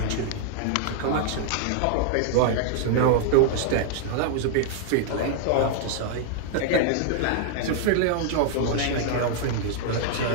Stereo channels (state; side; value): different; both; correlation -0.01